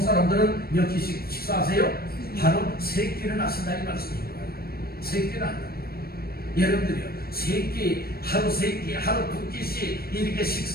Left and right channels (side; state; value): right; late; 0.44 ms